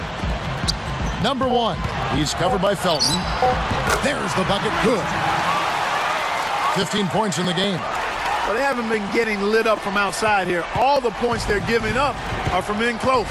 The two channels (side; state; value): both; identical; correlation 1.00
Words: Number 1. He's covered by Felton. There's the bucket. Good. 15 points in the game. Well, they haven't been getting lit up from outside here. All the points they're giving up are from in close.